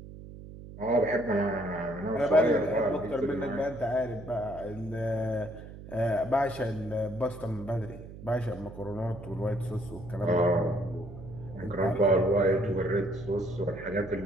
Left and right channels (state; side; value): noise; right; hum, 14 dB below the sound